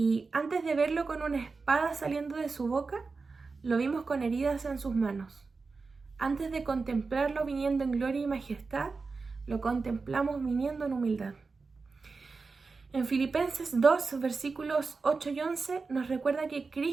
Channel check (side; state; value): left; quieter; 4.3 dB